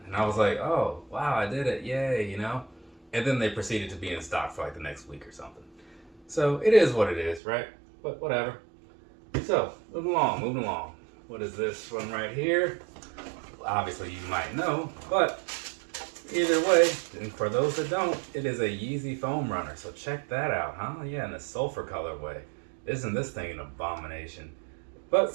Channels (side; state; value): left; drops out; at 7.4 s